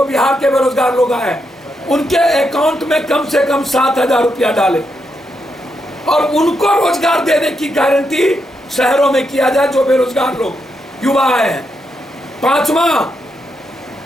बिहार के बेरोजगार लोग आए, उनके अकाउंट में कम से कम 7000 रुपया डालें और उनको रोजगार देने की गारंटी शहरों में किया जाए जो बेरोजगार लोग युवा आए हैं। 5वां,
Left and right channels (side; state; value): both; normal; correlation 0.82